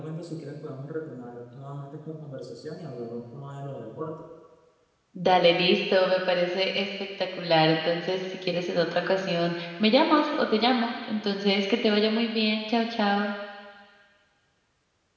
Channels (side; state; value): both; identical; correlation 1.00